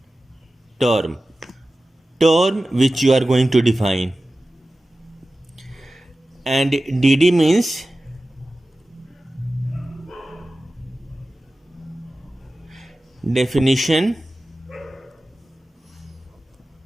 term which you are going to define, and dd means definition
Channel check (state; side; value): normal; both; correlation 0.95